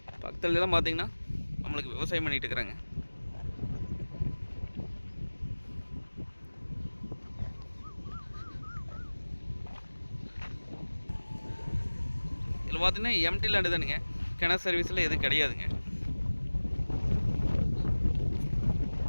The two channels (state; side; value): inverted; both; correlation -1.00